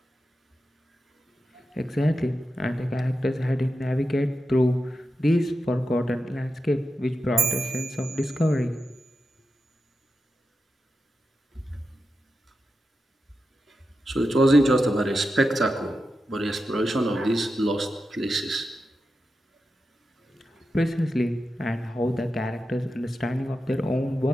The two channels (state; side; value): normal; both; correlation 0.90